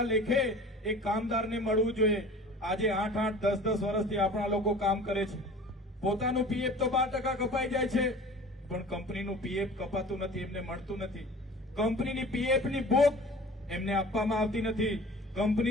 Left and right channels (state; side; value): normal; both; correlation 0.43